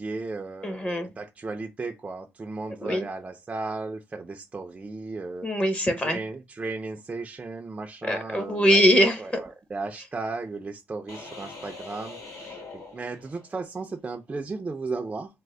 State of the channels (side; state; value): both; normal; correlation 0.76